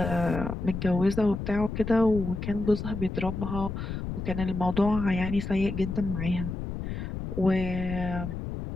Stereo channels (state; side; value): noise; left; rumble, 5 dB below the sound